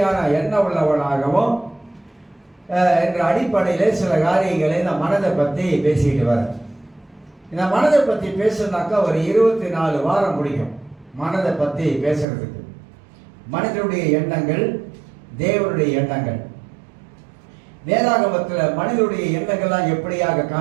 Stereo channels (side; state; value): left; drops out; at 12.2 s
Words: எண்ணம் உள்ளவனாகவும் என்ற அடிப்படையில் சில காரியங்களை இந்த மனதை பற்றி பேசிக்கிட்டு வரேன். இந்த மனதை பற்றி பேசுனாக்கா ஒரு 24 வாரம் முடியும் மனதை பற்றி பேசுறதுக்கு. மனிதனுடைய எண்ணங்கள், தேவனுடைய எண்ணங்கள். வேதாகமத்தில் மனிதனுடைய எண்ணங்கள்லாம் எப்படியாக